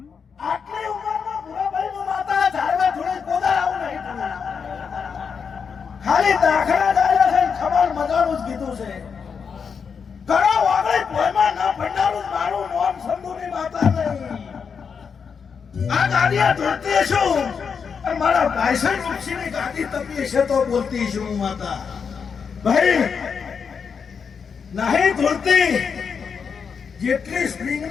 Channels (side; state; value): right; quieter; 6.2 dB